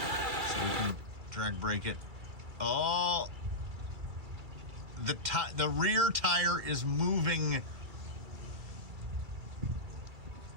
so we can drag brake it. Oh, the rear tire is moving.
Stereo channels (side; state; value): left; late; 2.3 ms